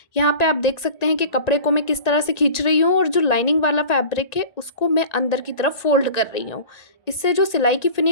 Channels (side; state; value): right; late; 1.8 ms